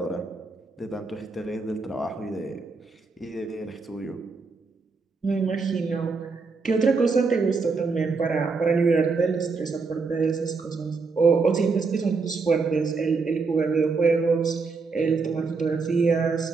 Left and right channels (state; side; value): quieter; left; 4.5 dB